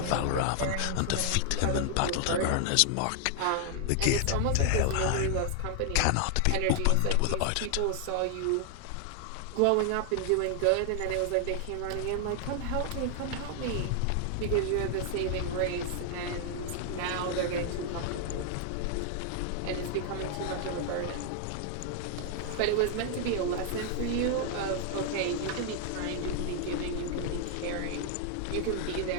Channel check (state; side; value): different; both; correlation 0.00